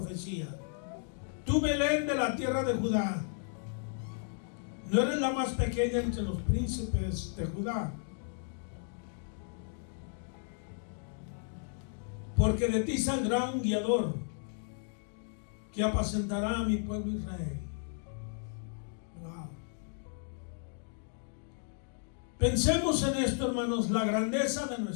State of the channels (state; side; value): silent; right; 55 dB below the other